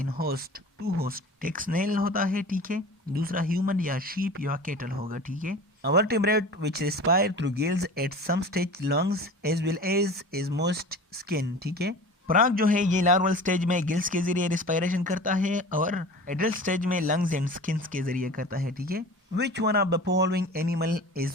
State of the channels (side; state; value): both; normal; correlation 0.38